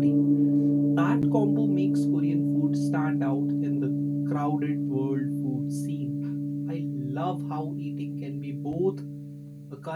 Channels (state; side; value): identical; both; correlation 1.00